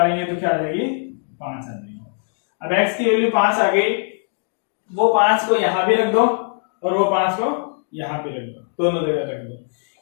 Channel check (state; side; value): silent; right; 59 dB below the other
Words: तो क्या आ जाएगी 5 आ जाएगी। अब x की वैल्यू 5 आ गई, वो 5 को यहाँ भी रख दो और वो 5 को यहाँ पे रख दो, दोनों जगह रख दो,